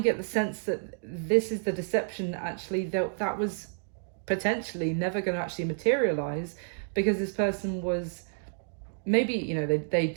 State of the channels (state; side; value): silent; left; 58 dB below the other